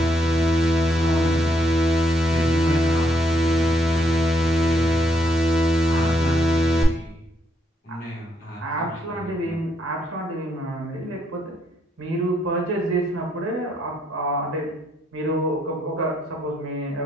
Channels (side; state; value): both; normal; correlation 0.74